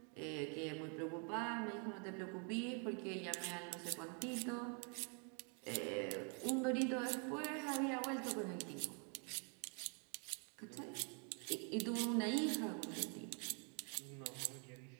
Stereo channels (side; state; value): left; quieter; 39.3 dB